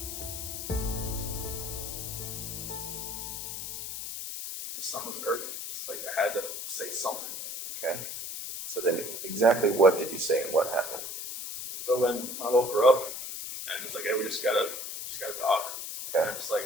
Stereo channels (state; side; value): noise; left; hiss, 6 dB below the sound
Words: Something was urgent, just like I had to say something. Okay. So then exactly what did you say and what happened? So when I woke her up and it's like, hey, we just gotta talk. Okay. And